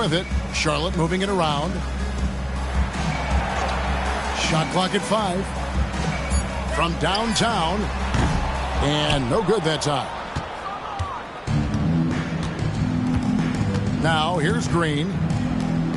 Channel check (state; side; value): identical; both; correlation 1.00